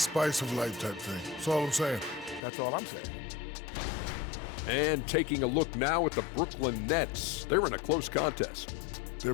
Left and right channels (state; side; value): drops out; right; at 2.4 s